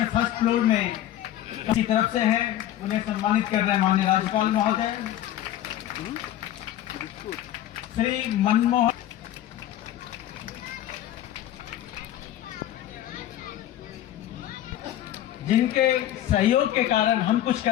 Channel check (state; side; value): quieter; right; 12.6 dB